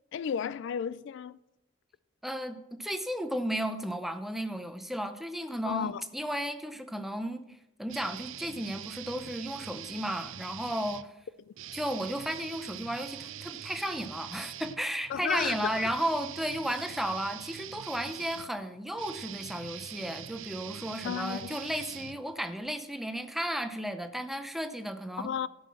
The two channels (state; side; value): normal; both; correlation 0.70